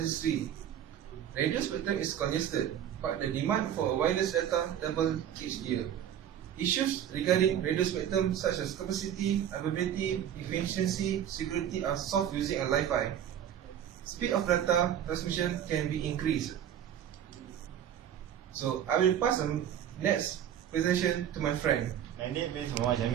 Radio spectrum is congested, but the demand for wireless data doubles each year. Issues regarding radio spectrum such as capacity, availability, efficiency, security are solved using a Wi-Fi. Speed of data transmission can be increased. So I will pass the next presentation to my friend. My name is Muhammad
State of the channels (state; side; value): quieter; left; 10.0 dB